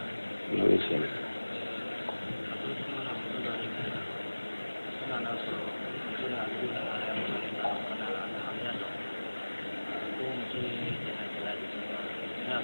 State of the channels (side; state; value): both; inverted; correlation -1.00